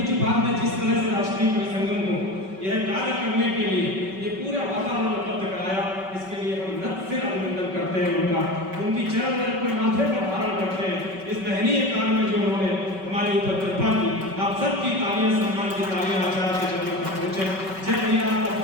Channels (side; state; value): left; late; 5.3 ms